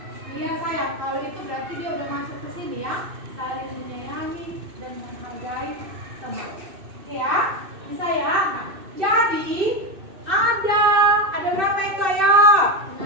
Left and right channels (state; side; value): late; left; 2.6 ms